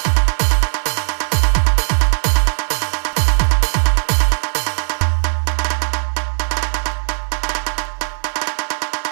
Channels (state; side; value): silent; left; digital silence